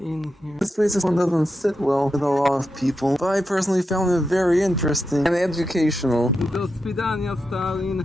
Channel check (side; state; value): both; normal; correlation 0.87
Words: here. This place doesn't sit well with a lot of people, but I personally found it very interesting and educational. Do swidania, Stalin.